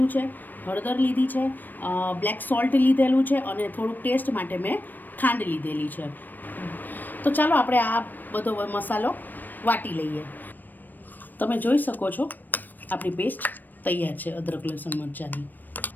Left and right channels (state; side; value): late; right; 0.090 ms